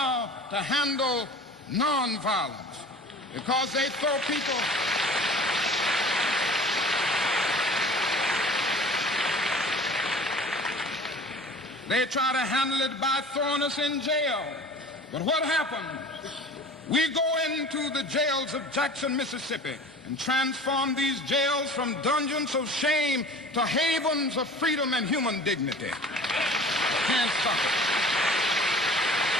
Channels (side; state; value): both; normal; correlation 0.43